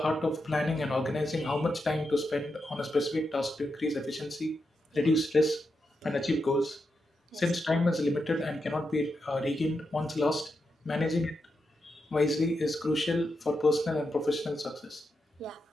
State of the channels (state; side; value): normal; both; correlation 0.86